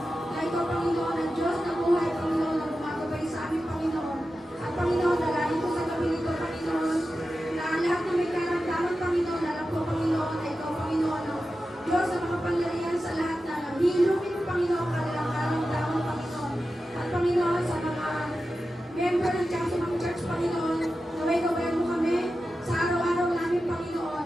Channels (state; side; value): normal; both; correlation 0.92